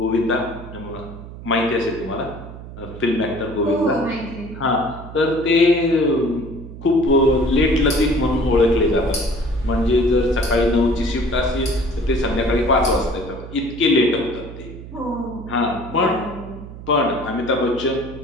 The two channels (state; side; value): noise; right; hum, 13 dB below the sound